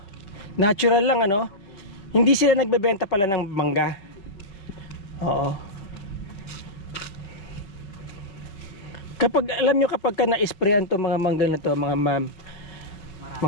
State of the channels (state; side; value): late; right; 5.3 ms